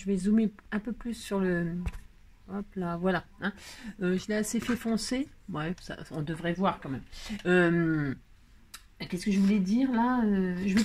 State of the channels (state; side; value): identical; both; correlation 1.00